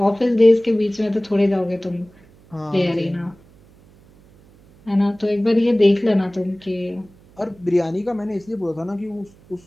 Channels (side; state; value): right; noise; hum, 27 dB below the sound